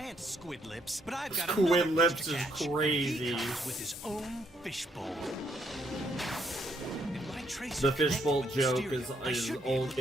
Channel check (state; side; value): normal; both; correlation 0.72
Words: Squid Lips, but I've got Squid another Lips fish to is catch. crazy. He comes with his own fishbowl. If my tracer The fishbowl connected with joke Mysterio, I is should be able old, to